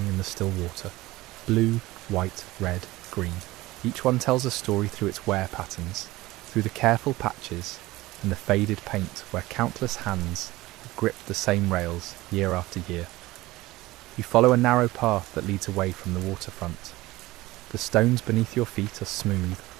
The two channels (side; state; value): left; quieter; 18.7 dB